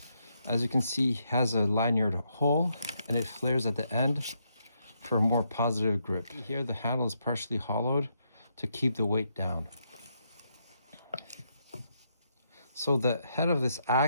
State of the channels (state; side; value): inverted; both; correlation -0.78